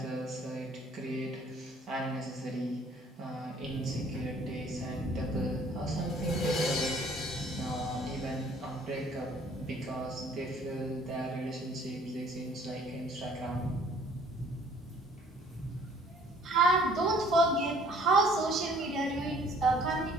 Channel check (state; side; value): normal; both; correlation 0.57